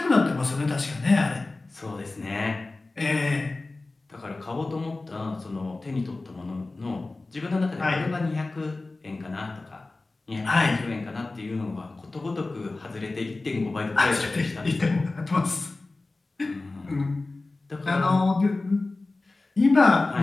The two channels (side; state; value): right; quieter; 3.2 dB